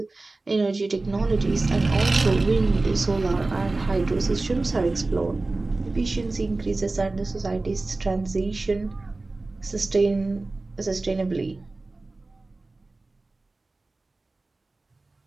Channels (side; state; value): left; quieter; 3.3 dB